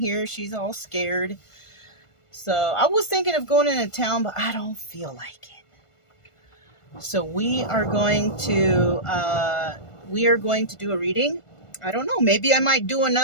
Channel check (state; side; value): late; right; 1.4 ms